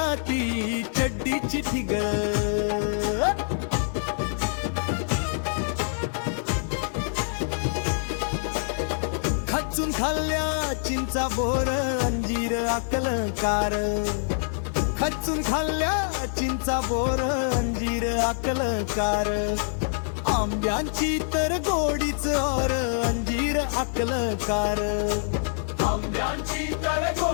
ती चड्डीची ठिगळ. खचून खाल्ल्या चिंचा बोर अंजीर अकलकार. खचून खाल्ल्या चिंचा बोर अंजीर अकलकार. आंब्यांची तर गोडीच और अंजीर अकलकार. आंब्यांची तर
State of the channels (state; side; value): silent; right; digital silence